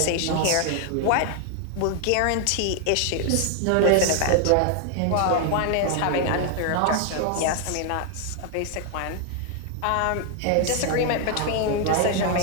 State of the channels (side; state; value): both; different; correlation 0.00